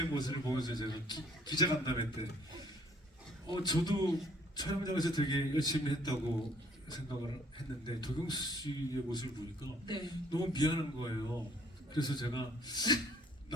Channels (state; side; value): normal; both; correlation 0.61